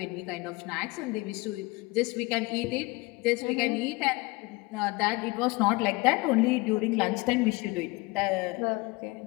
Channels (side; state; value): right; quieter; 23.6 dB